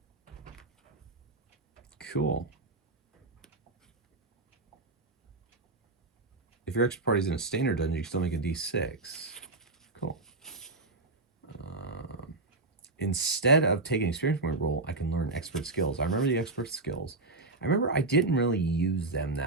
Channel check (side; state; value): left; quieter; 3.1 dB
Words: Cool. If your expert party's in a standard dungeon, you can still make a D6. Cool. Instead of taking an experience point roll, I can learn expert skills. I remember the expert skills. I remember I didn't really use them